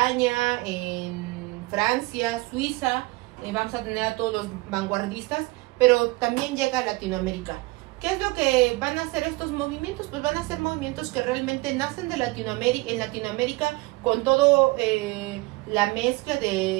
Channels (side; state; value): left; quieter; 23.1 dB